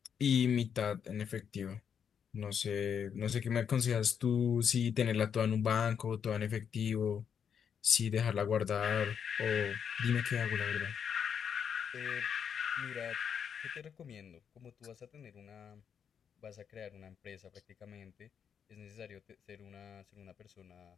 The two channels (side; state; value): right; quieter; 7.6 dB